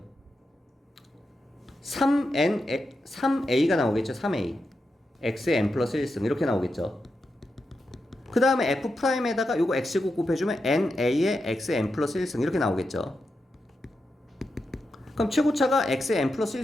3a가 나오겠죠? 3a. x의 n 플러스 1승 이렇게 나오겠죠? 그 다음에 f 프라임에다가 요거 x제곱 곱해주면 na의 x의 n 플러스 1승 이렇게 나오겠죠? 그럼 최고차가 x의 n 플러스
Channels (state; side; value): normal; both; correlation 0.88